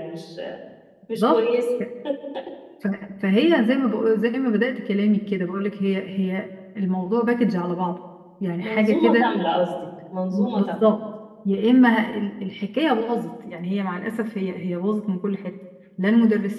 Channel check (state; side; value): identical; both; correlation 1.00